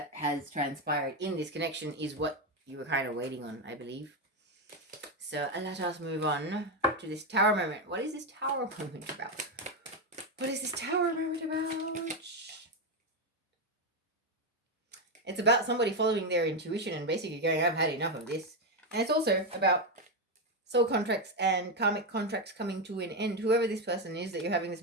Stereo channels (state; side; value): normal; both; correlation 0.08